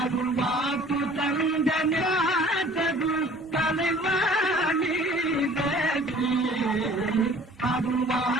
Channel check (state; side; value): normal; both; correlation 0.51